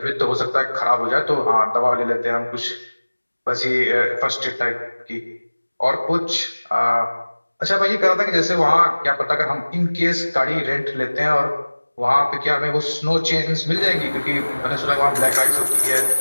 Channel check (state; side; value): inverted; both; correlation -1.00